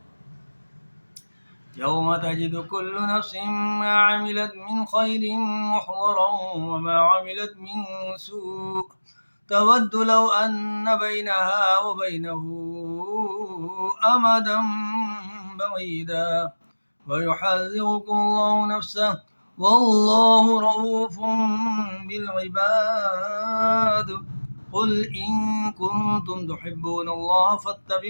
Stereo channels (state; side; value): inverted; both; correlation -1.00